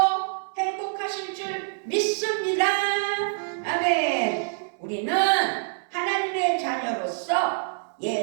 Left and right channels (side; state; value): left; silent; 61 dB below the other